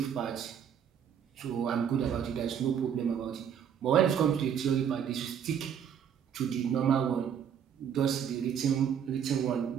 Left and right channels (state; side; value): quieter; left; 8.3 dB